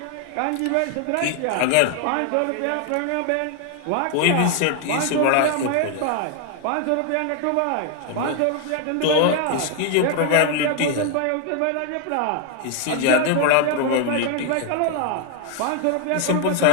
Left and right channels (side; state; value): both; different; correlation 0.00